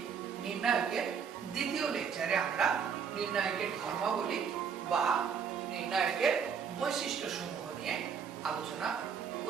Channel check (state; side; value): quieter; left; 6.8 dB